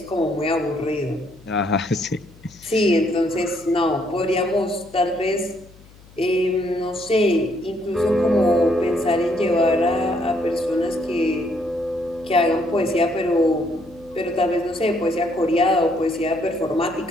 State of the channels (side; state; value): left; noise; hum, 24 dB below the sound